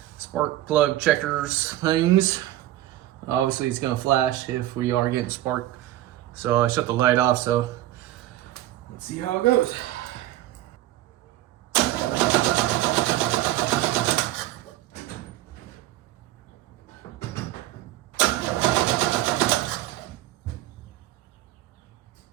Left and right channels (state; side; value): quieter; left; 14.7 dB